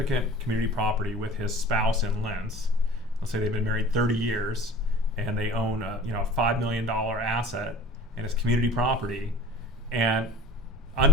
community property with his spouse in Lentz, let's say they've been married 30 years and they own a $5 million asset and it's community property, and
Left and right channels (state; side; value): normal; both; correlation 0.45